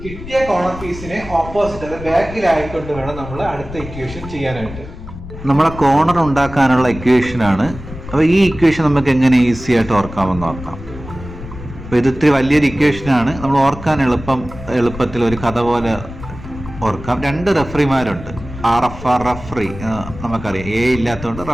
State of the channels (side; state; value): left; noise; rumble, 12 dB below the sound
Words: കിട്ടിയ കോർണർ പീസിനെ ഓപ്പോസിറ്റ്, അത് ബാക്കിലായിക്കൊണ്ട് വേണം നമ്മൾ അടുത്ത ഇക്വേഷൻ ചെയ്യാനായിട്ട്. നമ്മളെ കോർണർ ഉണ്ടാക്കാനുള്ള ഇക്വേഷൻ ആണ്. അപ്പോൾ ഈ ഇക്വേഷൻ നമുക്ക് എങ്ങനെ ഈസി ആയിട്ട് ഓർക്കാമെന്ന് നോക്കാം. അപ്പോൾ ഇത് ഇത്തിരി വലിയൊരു ഇക്വേഷനാണ്. നമ്മൾ ഓർക്കാൻ എളുപ്പത്തിൽ ഒരു കഥ പോലെ ഓർക്കാം. 2 റഫറിമാരുണ്ട്. RFR റഫറി നമുക്കറിയാം, A ഇല്ലാത്തതുകൊണ്ട്